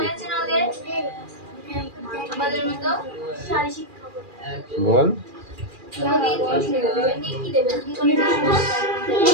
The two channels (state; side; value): late; left; 2.4 ms